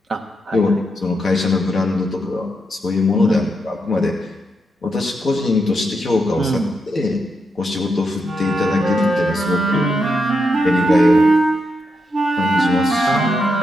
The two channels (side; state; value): both; normal; correlation 0.83